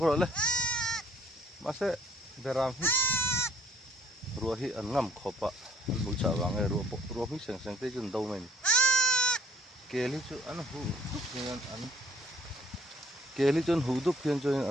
le ma se beram hi ruwa hi an ngam khopa an bu cha wang e ruwa hi seng te jun do men keli chu an hu dup hian an keli chun hu dup hian chu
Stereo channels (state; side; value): normal; both; correlation 0.60